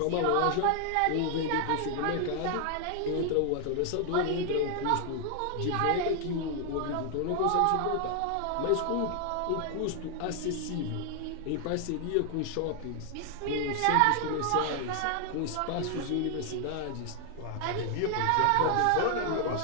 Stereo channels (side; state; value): both; different; correlation 0.00